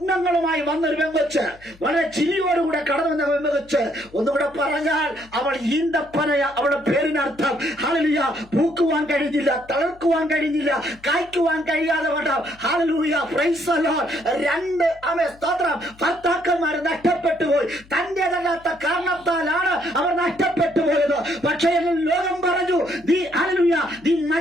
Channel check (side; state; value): left; noise; hum, 25 dB below the sound